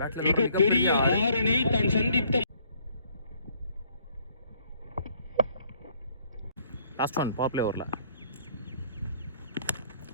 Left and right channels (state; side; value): inverted; both; correlation -0.64